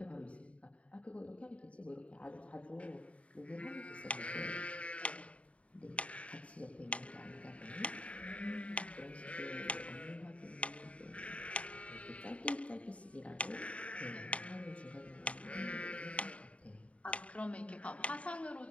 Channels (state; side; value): late; right; 0.064 ms